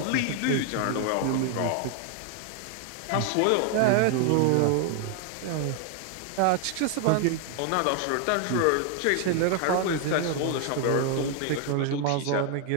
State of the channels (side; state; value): both; different; correlation 0.00